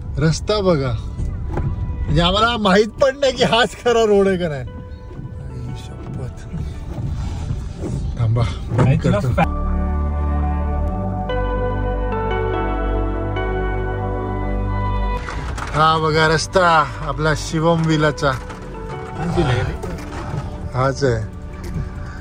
रस्ता बघा, म्हणजे आम्हाला माहित पण नाही की हाच खरा रोड आहे का नाही। शपथ, थांबा करतो। हा बघा रस्ता आपला शिवम विलाचा हाच आहे।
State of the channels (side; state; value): both; identical; correlation 1.00